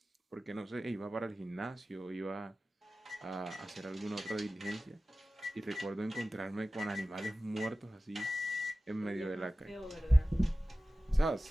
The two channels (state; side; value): normal; both; correlation 0.96